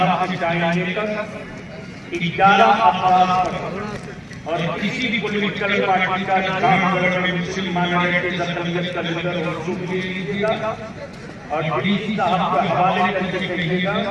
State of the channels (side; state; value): both; identical; correlation 1.00